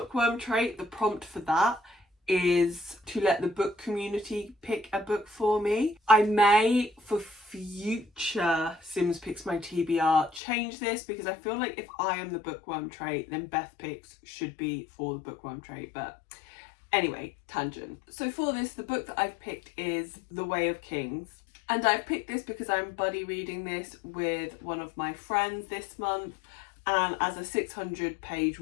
trait, the prompt for that is to let the book community pick a book for me. I may, for future Sims Picks My TBR, change this, because I feel like if I am the bookworm trait, then Beth Picks should be for the bookworm trait. But anyway, tangent. So for this, the book that I've picked is The Way of Kings. And I've picked this because I'm buddy reading this with one of my friends this month. And as a 600-page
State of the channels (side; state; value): right; drops out; at 10.4 s